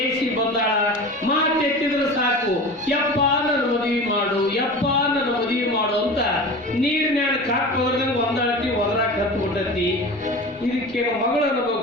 ಬಂದಾಳ, ಮಾತೆತ್ತಿದ್ರೆ ಸಾಕು, ಯಪ್ಪ ನನ್ನ ಮದುವೆ ಮಾಡು ಅಂತ ನೀರಿನ್ಯಾನ ಕಾಕ್ ಹೋದ್ರಂಗ ಒಂದಾಳತಿ ಒದರಾಕ್ ಹತ್ಬಿಟ್ಟತಿ. ಇದಕ್ಕೇನು ಮಗಳು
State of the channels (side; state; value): both; normal; correlation 0.33